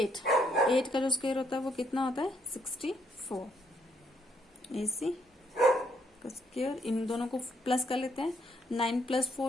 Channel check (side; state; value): both; normal; correlation 0.71